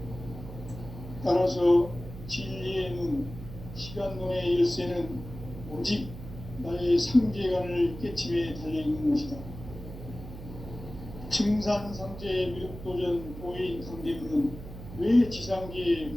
따라서 진리의 눈, 시간론의 열쇠는 오직 나의 상제관을 깨침에 달려있는 것이다. 증산상제 미륵도전 도인 강대문은 왜 지상계에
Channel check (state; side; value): noise; right; hum, 12 dB below the sound